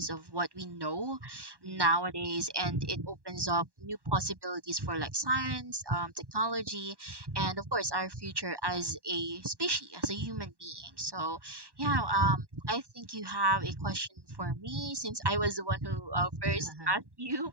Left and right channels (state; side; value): late; left; 1.1 ms